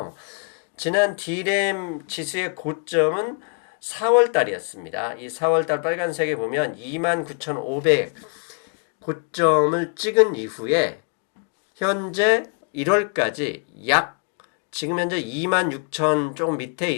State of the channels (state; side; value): quieter; right; 39.1 dB